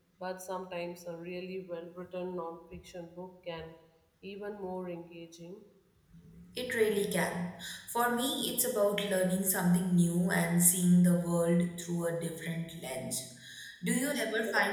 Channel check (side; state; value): both; identical; correlation 1.00